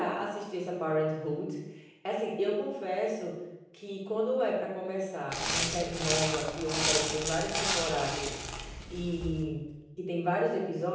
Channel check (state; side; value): identical; both; correlation 1.00